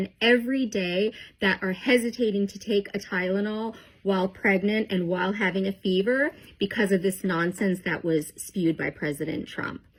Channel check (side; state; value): both; identical; correlation 1.00